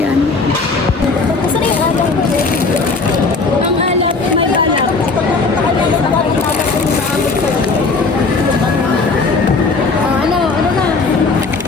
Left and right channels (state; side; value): quieter; right; 4.1 dB